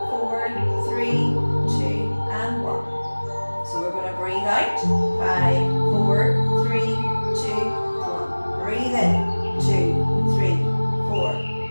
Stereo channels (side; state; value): both; inverted; correlation -1.00